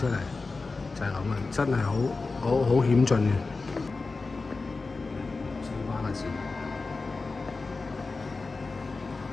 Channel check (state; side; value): quieter; right; 3.9 dB